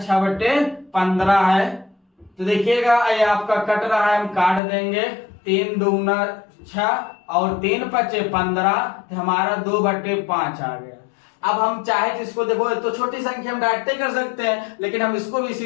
बटे 15 है। तो देखिएगा ये आपका कट रहा है, हम काट देंगे। 3 दूना 6 और 3 पचे 15, तो हमारा 2 बटे 5 आ गया। अब हम चाहे तो इसको देखो, तो छोटी संख्या हम डायरेक्ट कर सकते हैं, लेकिन हम इसको भी इसी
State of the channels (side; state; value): right; drops out; at 4.6 s